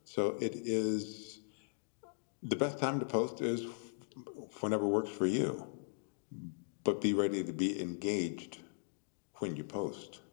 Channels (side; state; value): right; silent; digital silence